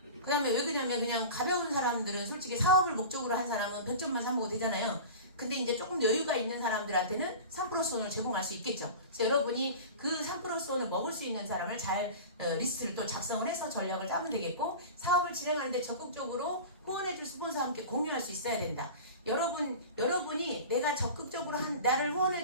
그 다음에 왜 그러냐면 그냥 가벼운 사람들은 솔직히 사업을 목적으로 한 사람은 100점만 사먹어도 되잖아요. 근데 이제 조금 여유가 있는 사람들한테는 3%손을 제공할 수 있겠죠. 그래서 여러분이 그 3%손을 먹을 수 있는 사람을 잘 리스트를 또 작성을 해서 전략을 짜면 되겠고, 사업을 진행하는데 적극적으로 후원해줄 스폰서와 함께 공유할 수 있어야 된다. 여러분이 내가 적극적으로 나를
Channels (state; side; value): inverted; both; correlation -0.33